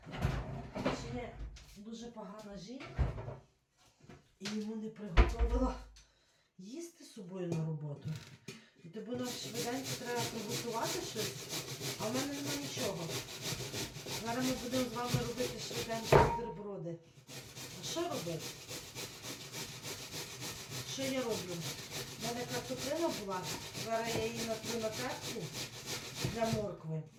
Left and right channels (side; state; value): both; identical; correlation 1.00